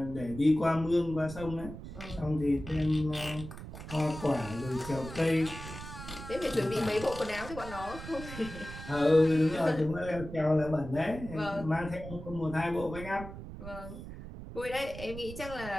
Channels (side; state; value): right; noise; rumble, 11 dB below the sound